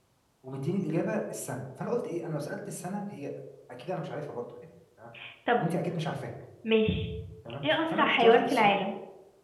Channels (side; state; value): both; identical; correlation 1.00